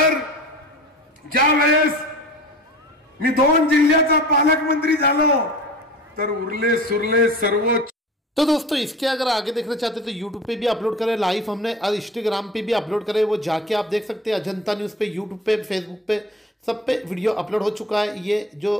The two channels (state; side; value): normal; both; correlation 0.38